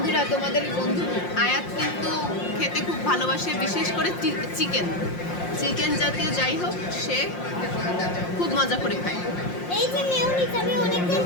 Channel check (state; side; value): late; right; 5.6 ms